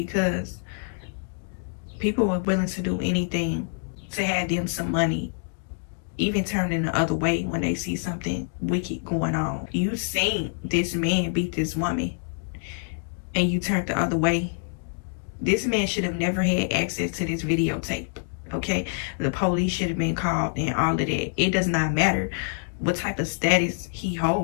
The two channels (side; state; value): right; silent; digital silence